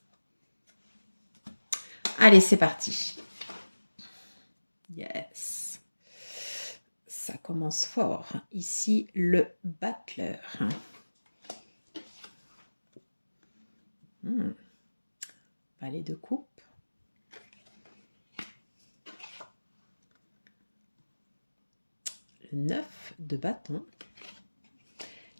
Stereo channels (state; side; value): inverted; both; correlation -1.00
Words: Allez, c'est parti. Yes. Ça commence fort. Ici, le battleur. Valet de coupe. Le 9 de bâton.